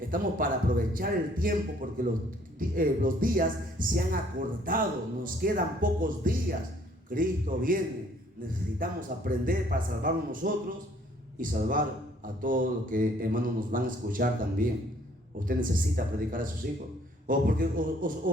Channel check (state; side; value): normal; both; correlation 0.61